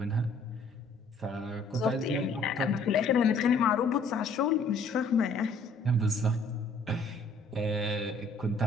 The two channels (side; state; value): right; quieter; 3.2 dB